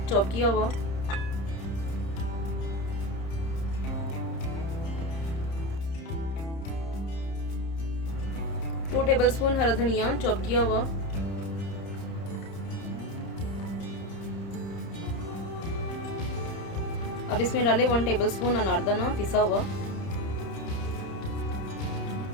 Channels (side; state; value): right; late; 30 ms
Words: चॉप किया हुआ, 2 टेबलस्पून हरा धनिया चॉप किया हुआ, अब इसमें डालें 1 टेबलस्पून अनारदाना पिसा हुआ,